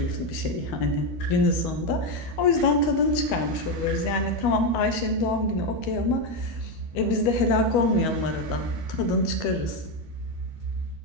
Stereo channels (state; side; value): late; right; 12 ms